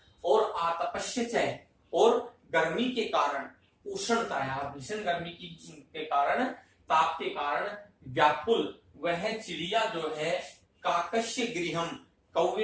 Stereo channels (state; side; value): identical; both; correlation 1.00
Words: और आतपस्य च, और गर्मी के कारण, उष्णताया, भीषण गर्मी के कारण, ताप के कारण व्याकुल वह चिड़िया जो है काकस्य गृहम,